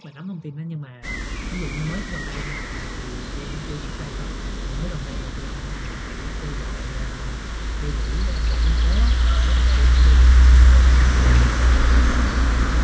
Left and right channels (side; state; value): both; identical; correlation 1.00